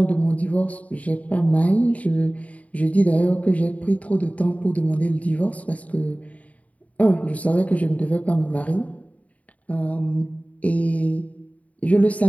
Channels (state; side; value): late; right; 0.069 ms